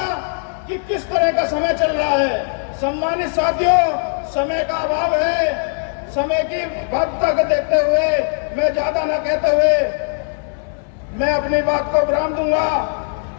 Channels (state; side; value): silent; right; 66 dB below the other